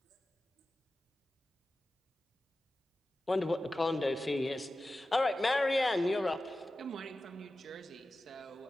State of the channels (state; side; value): normal; both; correlation 0.94